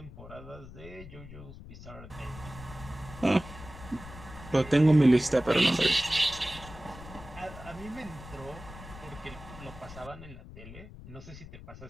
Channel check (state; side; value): noise; left; rumble, 15 dB below the sound